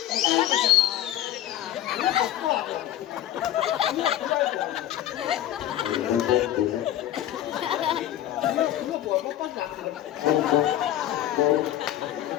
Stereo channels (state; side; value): quieter; right; 12.5 dB